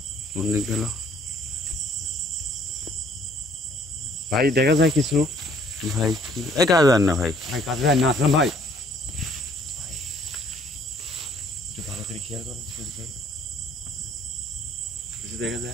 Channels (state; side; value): normal; both; correlation 0.60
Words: কোন দিক গেল ভাই, দেখা যায় কিছু ভাই? কি এই কাজ না ভাই, ভাই, কাজে যায় না আসলাম ভাই। একটু ভালো করে খেয়াল করুন সুজিত ভাই, কিছু দেখা